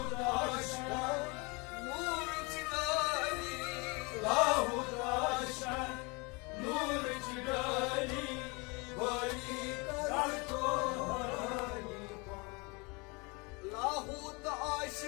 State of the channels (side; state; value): right; quieter; 28.7 dB